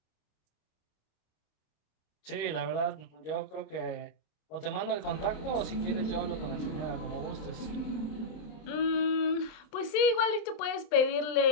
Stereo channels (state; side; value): late; right; 27 ms